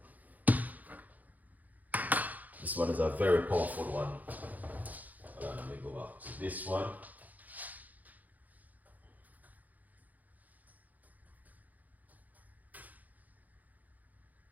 This one is a very powerful one. Let me go back to this one.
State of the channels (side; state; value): left; late; 0.080 ms